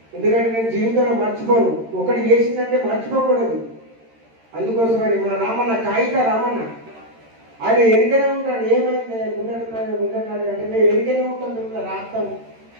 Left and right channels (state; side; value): late; left; 13 ms